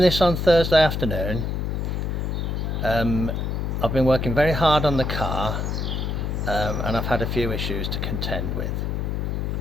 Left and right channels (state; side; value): noise; left; hum, 1 dB below the sound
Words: on Thursday afternoon. I've been working very hard on the car and I've had a few issues to contend with.